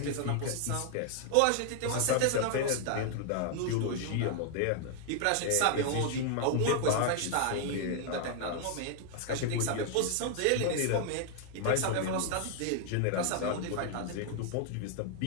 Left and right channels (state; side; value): different; both; correlation 0.00